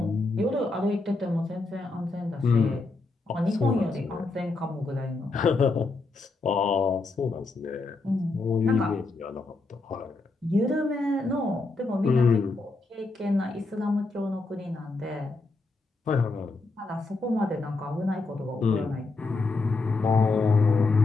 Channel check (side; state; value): right; quieter; 3.5 dB